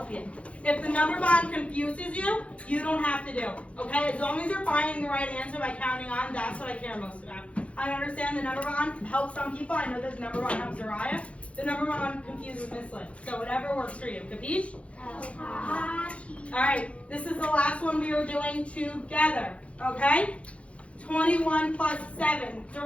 you. If the number bond confuses you, you don't have to do it. Okay? As long as you're finding the right answer by counting on, that's what I care most about. I understand the number bond helps some people. I know this number bond helps Uriah. The number bond confuses Miss Lynn. So whatever works for you. Capiche? All right. This is the last one we are doing together. Okay? 21 plus 7.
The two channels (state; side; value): late; right; 0.063 ms